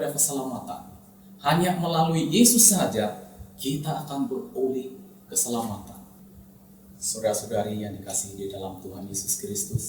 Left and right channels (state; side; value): identical; both; correlation 1.00